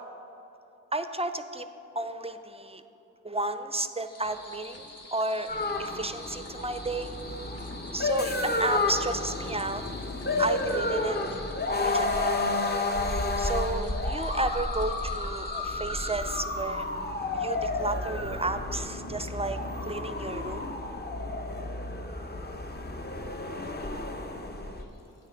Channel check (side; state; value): both; normal; correlation 0.01